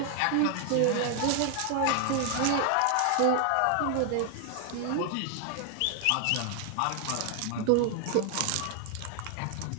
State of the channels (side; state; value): both; different; correlation 0.00